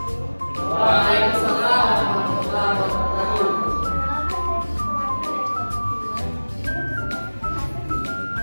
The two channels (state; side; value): inverted; both; correlation -1.00